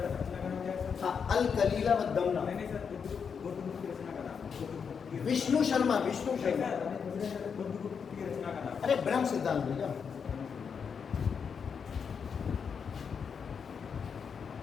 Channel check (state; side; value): quieter; right; 6.4 dB